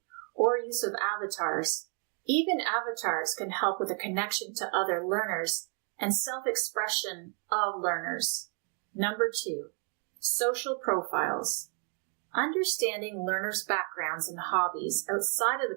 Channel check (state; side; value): quieter; left; 39.8 dB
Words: or use of avatars. Even avatars can help with a connection to other learners and self-expression of learners. Number 2, social profiles. Understanding learners' backgrounds and hobbies outside of